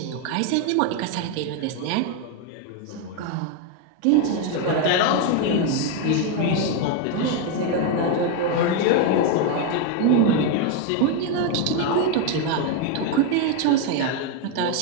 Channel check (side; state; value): both; different; correlation 0.01